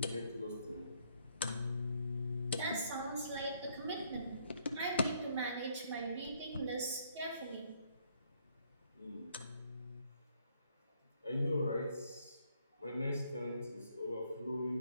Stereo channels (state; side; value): inverted; both; correlation -0.69